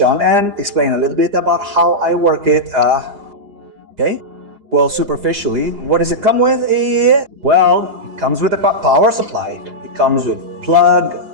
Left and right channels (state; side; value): late; left; 4.9 ms